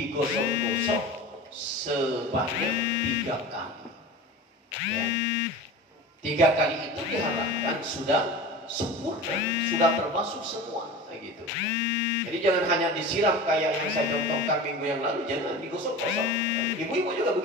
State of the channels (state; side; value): normal; both; correlation 0.34